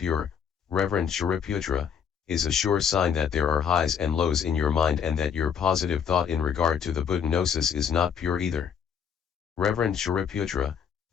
Reverend Shariputra, is a sure sign that there are highs and lows in your mind and that your positive thought in regard to the Buddha gnosis is not pure either. Reverend Shariputra,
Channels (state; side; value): quieter; right; 7.6 dB